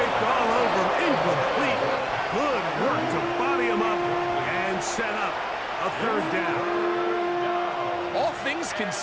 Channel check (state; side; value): identical; both; correlation 1.00